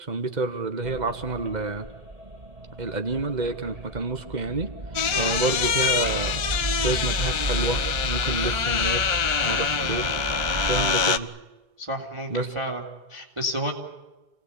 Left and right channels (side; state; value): left; late; 1.4 ms